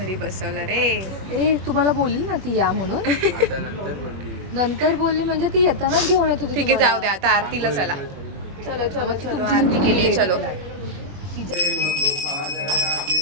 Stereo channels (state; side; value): late; left; 21 ms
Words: बसवलं रे. ए तुम्हाला बोलली ना ती या म्हणून. नंतर बोलली म्हणजे ती येतानाच घेऊन येत होती. ठीक आहे जाऊ द्या, आता आरतीला चला. चलो चलो चलो, आरती केली, चलो.